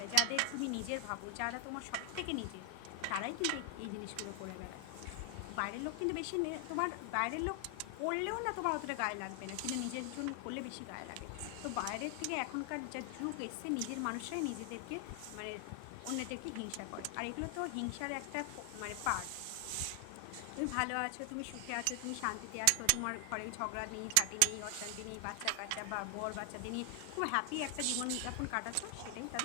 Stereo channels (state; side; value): different; both; correlation 0.00